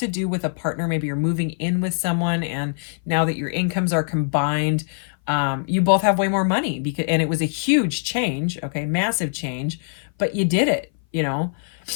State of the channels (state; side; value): silent; right; 59 dB below the other